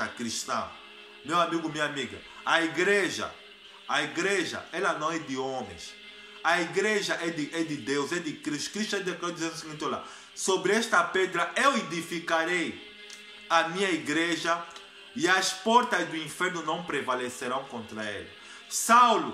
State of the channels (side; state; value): both; identical; correlation 1.00